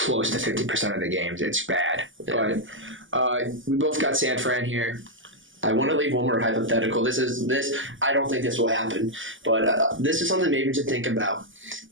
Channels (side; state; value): left; late; 0.57 ms